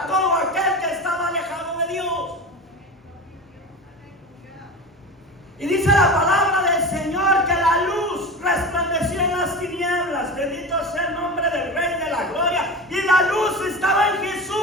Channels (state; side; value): normal; both; correlation 0.28